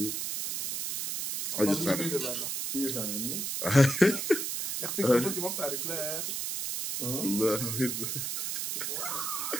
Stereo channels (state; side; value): noise; right; hiss, 2 dB below the sound